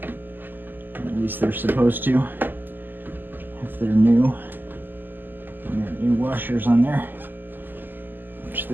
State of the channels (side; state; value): left; late; 0.095 ms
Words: At least they're supposed to, if they're new. And there are new washers on there, which